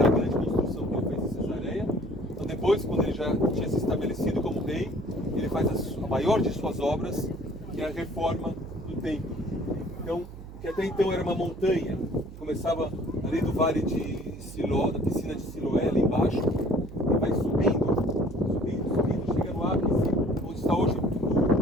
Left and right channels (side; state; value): right; noise; hum, 14 dB below the sound